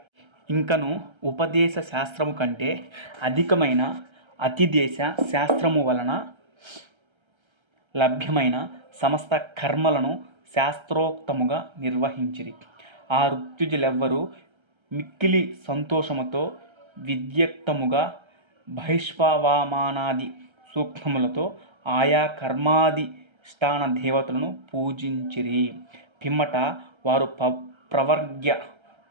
ఇంకను ఉపదేశ శాస్త్రము కంటే అధికమైన అతిదేశ శాస్త్రము వలన లభ్యమైన సమస్త కర్మలను శాస్త్రోక్తముగా నిర్వహించిరి. ఆ ఋత్విజులెవ్వరూ మిక్కిలి సంతోషముతో విద్యుక్తముగా బహిష్వమానాది సూక్తములతో ఆయా కర్మాధిష్టాన దేవతలను పూజించిరి. పిమ్మట వారు ప్రవర్గ్య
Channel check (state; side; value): late; left; 1.3 ms